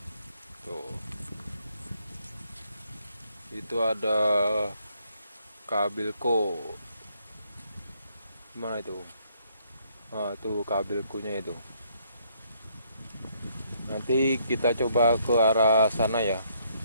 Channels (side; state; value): both; inverted; correlation -0.70